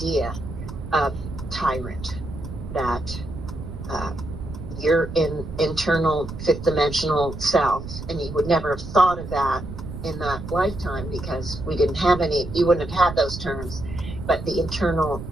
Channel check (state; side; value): noise; right; rumble, 9 dB below the sound